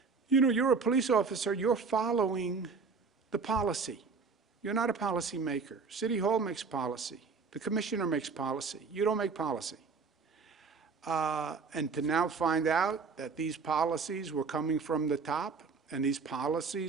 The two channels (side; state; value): left; quieter; 4.9 dB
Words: You know, you're a police officer, you're following the policy. You're not a policy maker. City Hall makes policy. The commissioner makes policy. You don't make policy. And to now find out that these policies were coming from the top and these